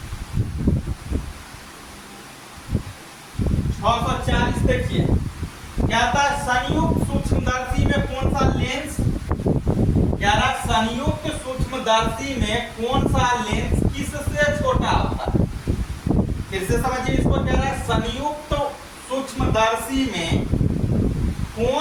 640 देखिए, क्या था? संयुक्त सूक्ष्मदर्शी में कौन सा लेंस, क्या रहा? संयुक्त सूक्ष्मदर्शी में कौन सा लेंस किससे छोटा होता है? फिर से समझिए इसको, कह रहा है संयुक्त सूक्ष्मदर्शी में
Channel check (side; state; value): both; identical; correlation 1.00